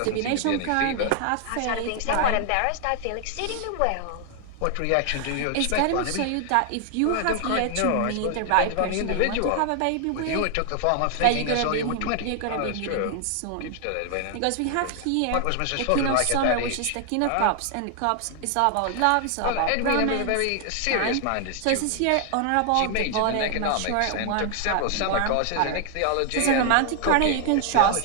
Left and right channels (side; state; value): both; different; correlation 0.00